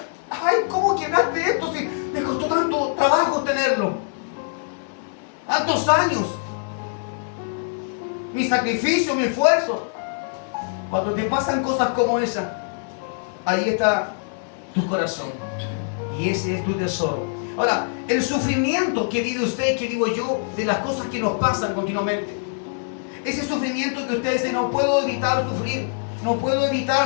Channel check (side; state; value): right; silent; 57 dB below the other